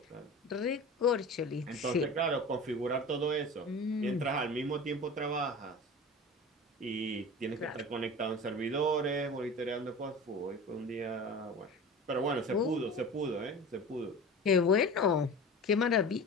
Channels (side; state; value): both; normal; correlation 0.35